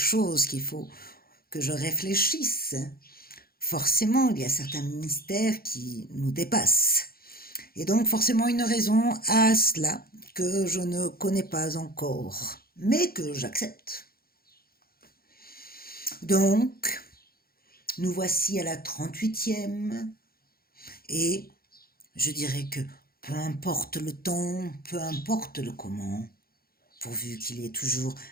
qu'il faut que je réfléchisse. Forcément, il y a certains mystères qui nous dépassent. Et donc forcément une raison à cela que je ne connais pas encore, mais que j'accepte. Donc, nous voici à la 38e et je dirais que peu importe le temps, peu importe le comment, pourvu qu'il y ait toujours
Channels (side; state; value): right; late; 0.44 ms